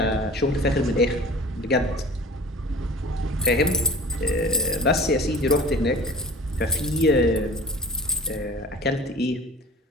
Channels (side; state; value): both; normal; correlation 0.41